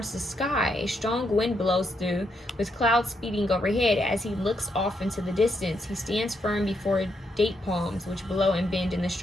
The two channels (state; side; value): normal; both; correlation 0.79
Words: the sky. A strong wind blows through, with clouds speeding overhead. As he looks off into the distance, he stands firm before date palms, which blow and bend in the